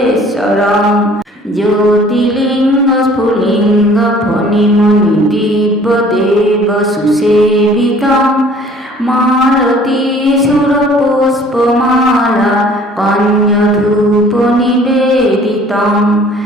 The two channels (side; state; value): both; normal; correlation 0.53